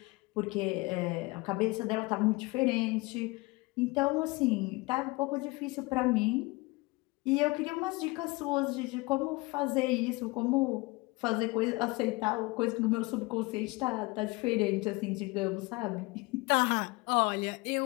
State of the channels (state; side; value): quieter; right; 24.2 dB